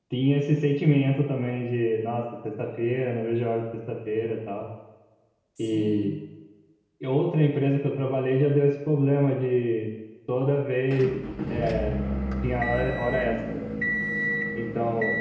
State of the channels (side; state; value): both; identical; correlation 1.00